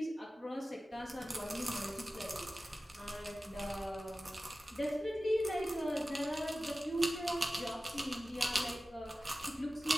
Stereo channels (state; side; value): normal; both; correlation 0.95